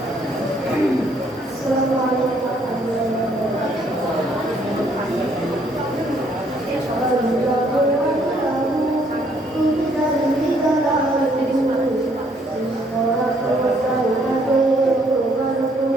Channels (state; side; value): normal; both; correlation 0.67